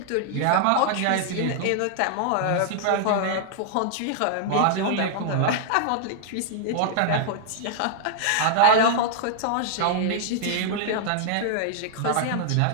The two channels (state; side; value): different; both; correlation -0.01